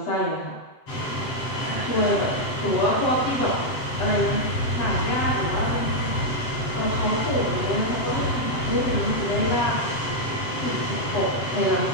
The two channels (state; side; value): late; right; 7.8 ms